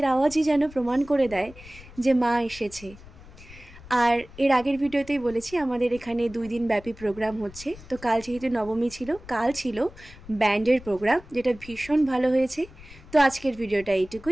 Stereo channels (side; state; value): left; noise; rumble, 19 dB below the sound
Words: আওয়াজই যেন প্রমাণ করে দেয় যে মা এসেছে। আর এর আগের ভিডিওতেই বলেছি আমাদের এখানে 2 দিন ব্যাপী প্রোগ্রাম হচ্ছে। তো কাল যেহেতু নবমী ছিল, কাল ছিল ব্যান্ডের প্রোগ্রাম, যেটা ভীষণ ভালো হয়েছে। তো আজকের ভিডিওটা